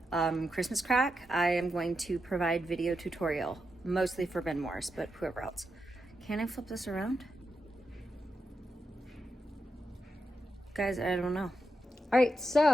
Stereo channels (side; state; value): both; normal; correlation 0.86